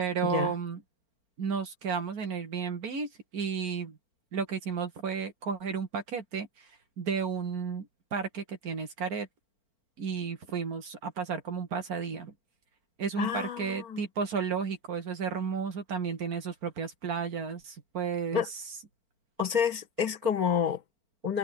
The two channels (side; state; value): left; late; 4.4 ms